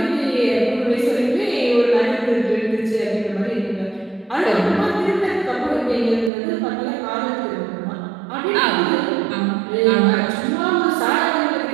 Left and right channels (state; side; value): drops out; left; at 6.3 s